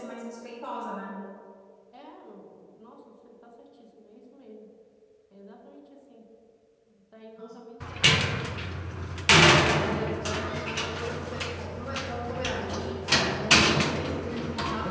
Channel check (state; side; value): identical; both; correlation 1.00